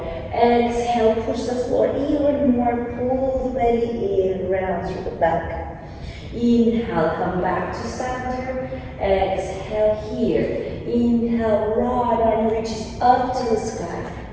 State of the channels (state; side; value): identical; both; correlation 1.00